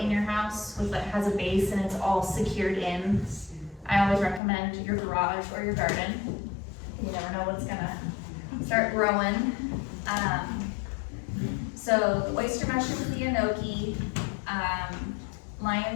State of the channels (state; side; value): drops out; right; at 4.4 s